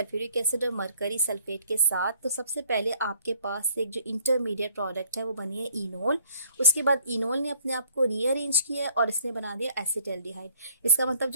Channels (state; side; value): inverted; both; correlation -0.63